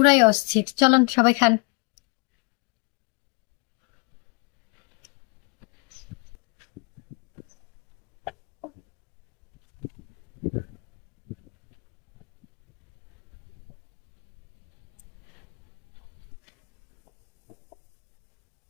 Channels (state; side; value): quieter; right; 34.5 dB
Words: অস্থির। চলেন সবাই খান।